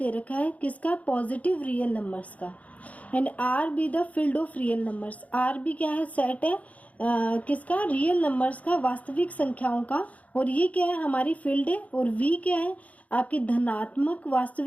रखा है किसका? पॉजिटिव रियल नंबर्स का। And R be the field of real numbers. R be क्या है? सेट है किसका? रियल नंबर्स का, वास्तविक संख्याओं का। और ये क्या है? हमारी फील्ड है। और वी क्या है? आपकी धनात्मक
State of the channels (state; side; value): late; right; 0.069 ms